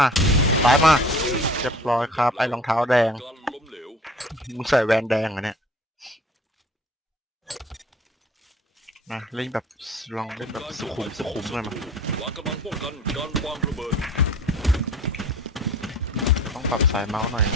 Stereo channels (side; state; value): both; normal; correlation 0.46